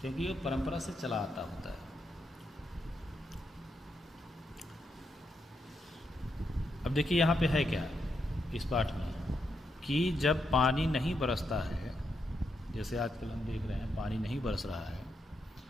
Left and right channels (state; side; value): normal; both; correlation 0.82